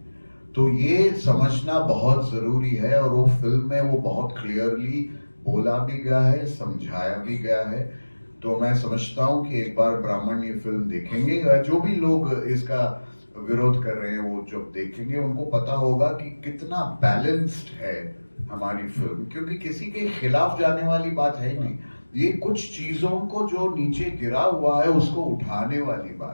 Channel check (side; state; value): both; inverted; correlation -1.00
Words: तो ये समझना बहुत जरूरी है और वो फिल्म में वो बहुत क्लियरली बोला भी गया है, समझाया भी गया है। तो मैं समझता हूँ कि एक बार ब्राह्मण ये फिल्म देखेंगे, जो भी लोग इसका विरोध कर रहे हैं वो जब देखेंगे उनको पता होगा कि कितना बैलेंस्ड है हमारी फिल्म, क्योंकि किसी के खिलाफ जाने वाली बात है ही नहीं। ये कुछ चीजों को जो नीचे गिरा हुआ है उसको उठाने वाली